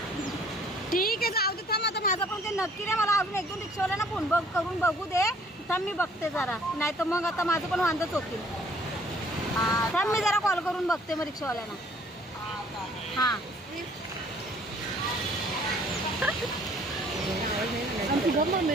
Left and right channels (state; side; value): normal; both; correlation 0.58